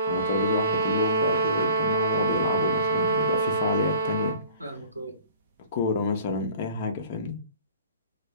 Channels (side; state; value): both; inverted; correlation -0.47